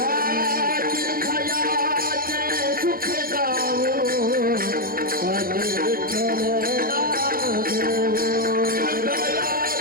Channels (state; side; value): late; left; 0.42 ms